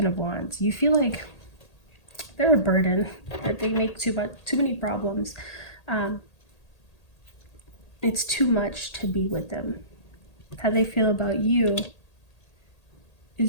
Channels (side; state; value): right; late; 1.8 ms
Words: of Wands. You feel like they're a burden, that they make too many problems. It's too much to be with them. How they feel about you